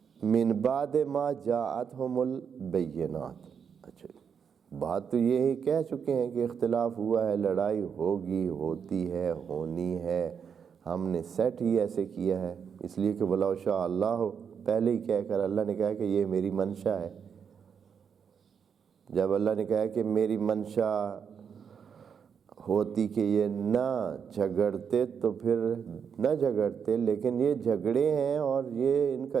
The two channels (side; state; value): left; quieter; 7.0 dB